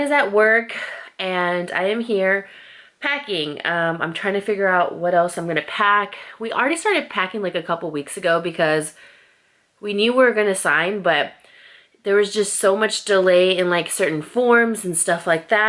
is at work and I am here packing. I'm trying to figure out what else I'm gonna pack. We already started packing like a couple weeks ago because we knew we were gonna sign, but there was just so much delay in like certain forms and stuff like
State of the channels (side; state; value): both; identical; correlation 1.00